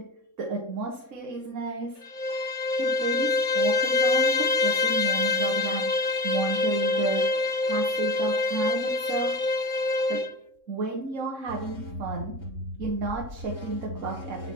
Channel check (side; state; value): left; late; 3.7 ms